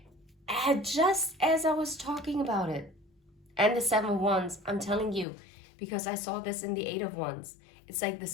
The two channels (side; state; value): right; drops out; at 5.2 s